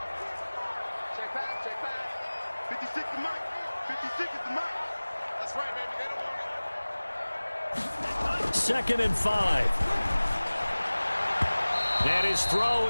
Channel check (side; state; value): both; inverted; correlation -1.00